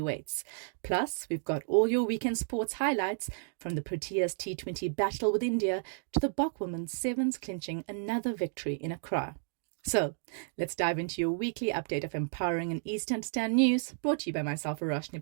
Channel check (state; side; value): silent; left; digital silence